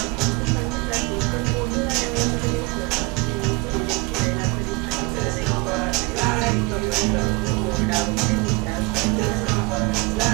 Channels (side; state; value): left; quieter; 27.3 dB